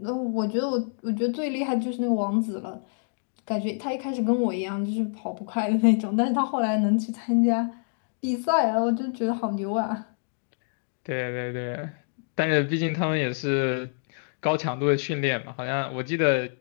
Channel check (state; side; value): silent; right; digital silence